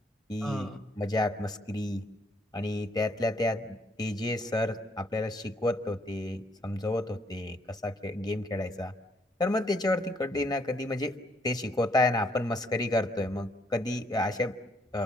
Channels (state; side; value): normal; both; correlation 0.69